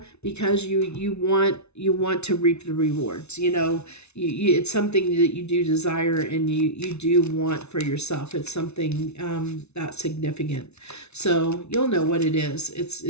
because you want to reap the rewards. It's something that you do desire, and you do want for yourself. It's something that's significant. So you'll know what it is.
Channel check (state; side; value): late; right; 0.81 ms